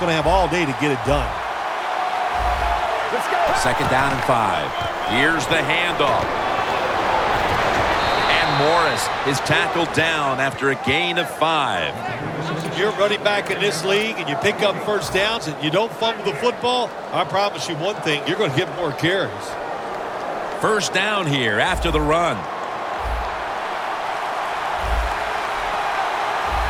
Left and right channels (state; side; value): identical; both; correlation 1.00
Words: to have all day to get it done. Let's go. 2nd down and 5. Here's the handoff. And Morris is tackled down after a gain of 5. You're running back in this league and you pick up first downs and you don't fumble the football, I promise you one thing, you're going to get more carries. First down here after the run.